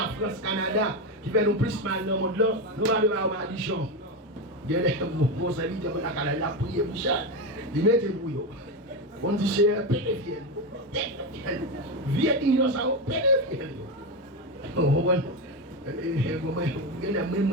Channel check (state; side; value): normal; both; correlation 0.14